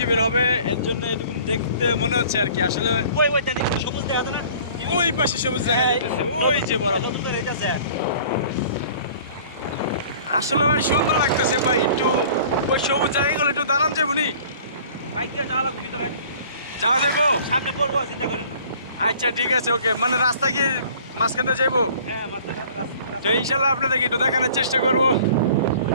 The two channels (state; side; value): inverted; both; correlation -0.49